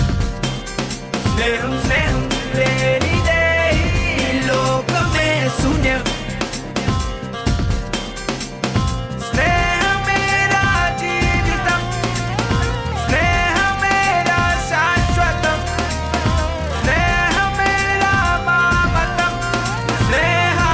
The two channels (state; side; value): identical; both; correlation 1.00